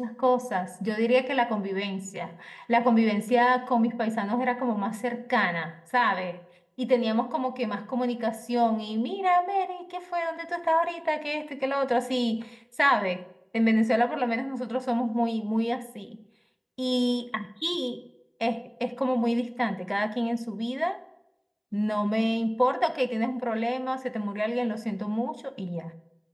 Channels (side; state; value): both; identical; correlation 1.00